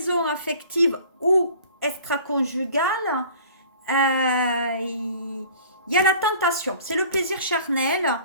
affective ou extra-conjugale. Il y a la tentation. C'est le plaisir charnel.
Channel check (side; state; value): both; inverted; correlation -0.48